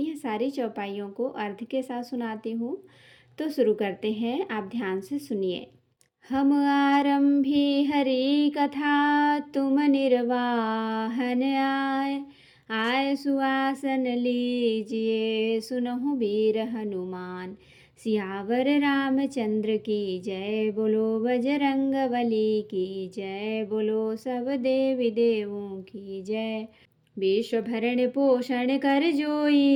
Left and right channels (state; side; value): identical; both; correlation 1.00